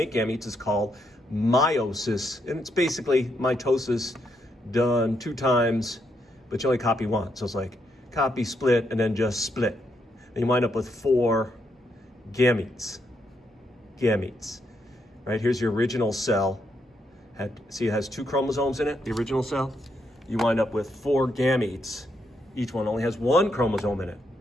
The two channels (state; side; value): normal; both; correlation 0.78